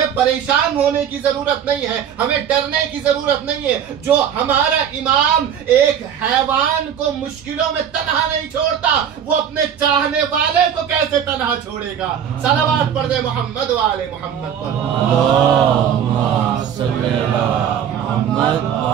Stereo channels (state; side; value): quieter; left; 8.7 dB